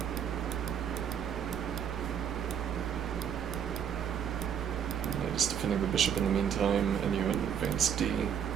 Just defending the bishop in the meantime, and you advance d.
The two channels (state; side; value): quieter; left; 8.5 dB